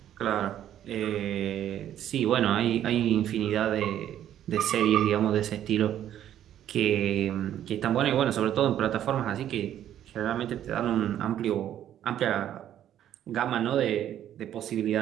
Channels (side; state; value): left; quieter; 11.1 dB